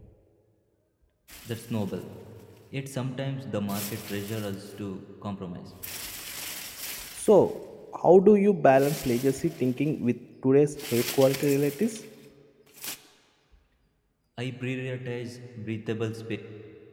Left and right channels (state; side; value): identical; both; correlation 1.00